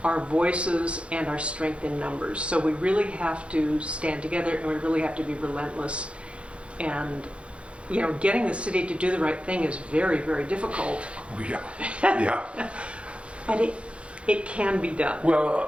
our voices and our strength in numbers. So we really have to stand together, and we really have to be relentless. And, you know, getting the city to do the right thing is very, very difficult. Yeah, yeah. But it can be done. Well,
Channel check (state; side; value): late; left; 0.060 ms